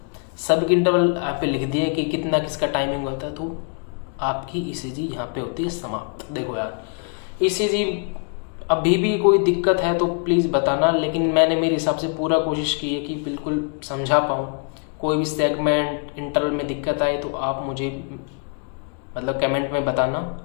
सब इंटरवल आप लिख दिए कि कितना किसका टाइमिंग होता है, तो आपकी ईसीजी यहाँ पे होती है समाप्त। देखो यार, ईसीजी अभी भी कोई दिक्कत है तो प्लीज़ बताना, लेकिन मैंने मेरे हिसाब से पूरा कोशिश की है कि बिल्कुल समझा पाऊँ। कोई भी सेगमेंट इंटरवल में दिक्कत आए तो आप मुझे मतलब कमेंट में बताना,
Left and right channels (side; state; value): right; quieter; 39.0 dB